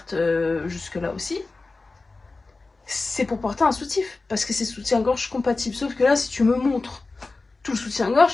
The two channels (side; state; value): right; quieter; 3.6 dB